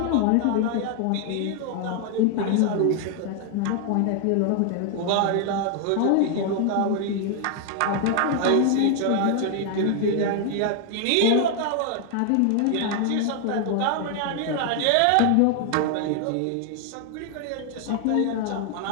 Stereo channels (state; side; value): different; both; correlation 0.00